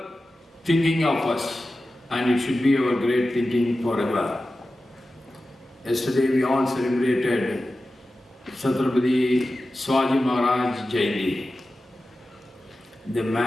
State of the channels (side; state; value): both; normal; correlation 0.94